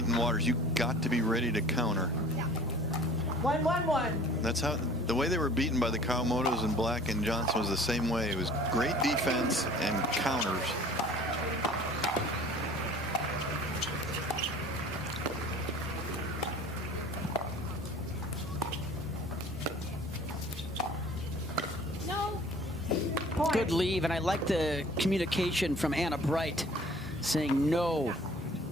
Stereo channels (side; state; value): both; normal; correlation 0.48